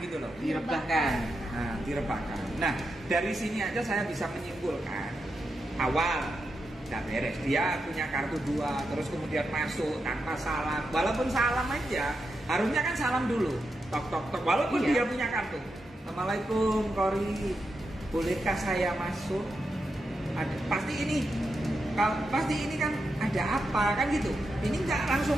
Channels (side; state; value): both; normal; correlation 0.86